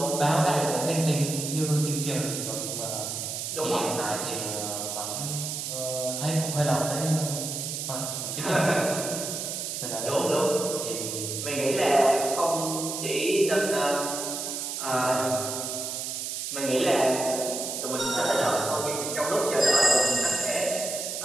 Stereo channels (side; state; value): right; noise; hiss, 4 dB below the sound